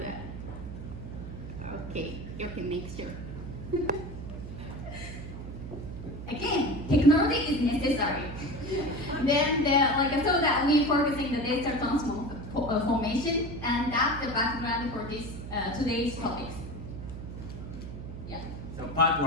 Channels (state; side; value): noise; right; hum, 9 dB below the sound